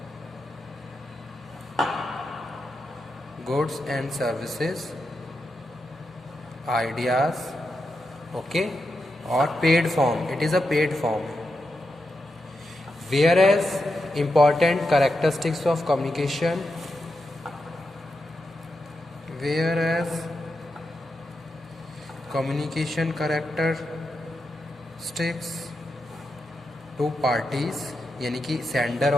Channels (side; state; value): both; normal; correlation 0.87